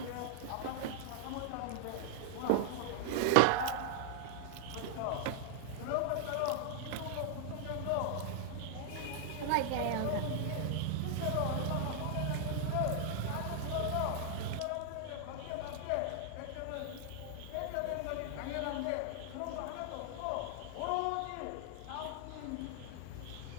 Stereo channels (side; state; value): both; different; correlation 0.00